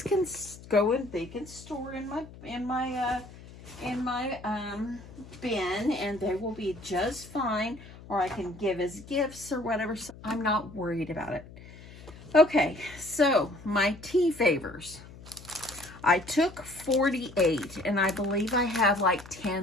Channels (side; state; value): left; noise; hum, 18 dB below the sound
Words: can go in. They can store in my bin, and they will be just fine. Or I can give as gifts or whatever. So I'm not worried about it. Okay, so my tea favors. I took 48, and I believe I have like